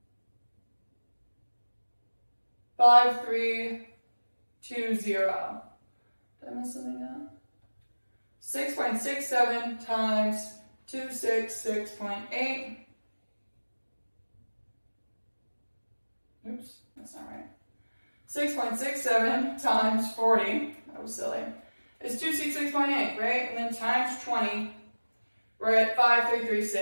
5320. Did I miss something out? 6.67 times 266.8. Oops, that's not right. 6.67 times 40, that was silly, is 266.8, right? And then times 20, we're at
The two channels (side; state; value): both; inverted; correlation -1.00